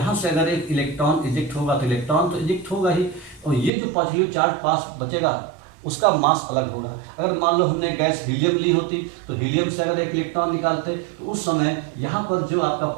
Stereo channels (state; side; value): drops out; left; at 3.7 s